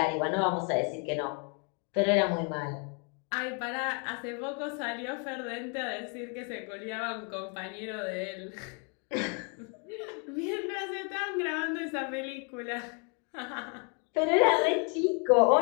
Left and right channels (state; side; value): quieter; right; 37.5 dB